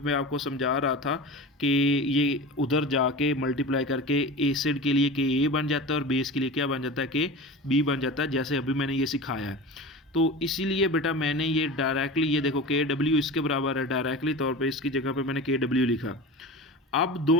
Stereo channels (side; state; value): both; normal; correlation 0.32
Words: आपको समझा रहा था कि ये उधर जाके मल्टीप्लाई करके एसिड के लिए KA बन जाता है और बेस के लिए क्या बन जाता है KB बन जाता है, जैसे अभी मैंने ये सिखाया है। तो इसीलिए बेटा मैंने ये डायरेक्टली, ये देखो KW इसके बराबर है, डायरेक्टली तौर पे इसकी जगह पे मैंने KW लिखा। अब